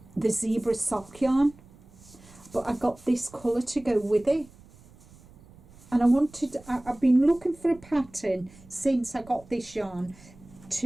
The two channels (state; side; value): noise; right; rumble, 24 dB below the sound